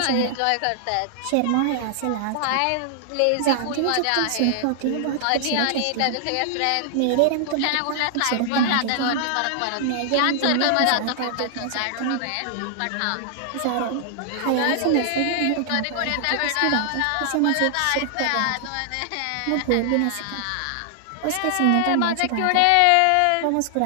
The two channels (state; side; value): different; both; correlation -0.01